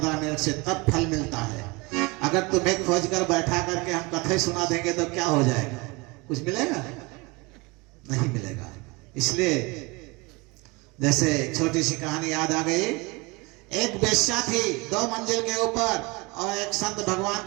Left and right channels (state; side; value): quieter; left; 25.9 dB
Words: मिनट से, तब फल मिलता है। अगर तुम्हें खोज कर बैठा करके हम कथे सुना देंगे तो क्या हो जाएगा? कुछ मिलेगा? नहीं मिलेगा। इसलिए जैसे छोटी सी कहानी याद आ गई। एक वेश्या थी 2 मंजिल के ऊपर, और एक संत भगवान